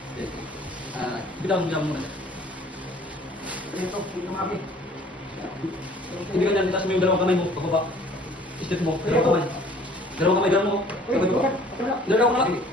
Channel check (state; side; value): normal; both; correlation 0.53